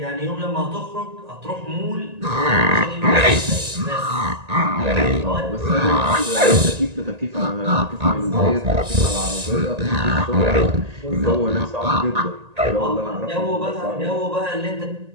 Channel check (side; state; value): left; late; 1.8 ms